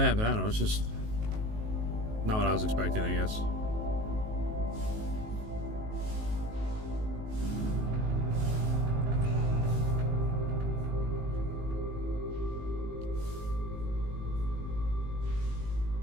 but I don't know. It's just not what I was expecting, I guess.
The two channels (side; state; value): left; late; 19 ms